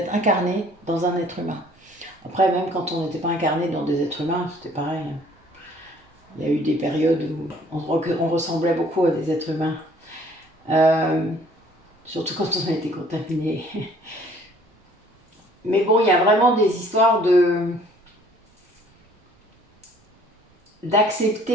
incarné dans un être humain. Après, même quand on n'était pas incarné dans des êtres humains, c'était pareil. Il y a eu des périodes où on ressemblait beaucoup à des êtres humains. Surtout quand on a été contaminé. Mais bon, il y a vraiment des histoires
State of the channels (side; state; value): both; normal; correlation 0.57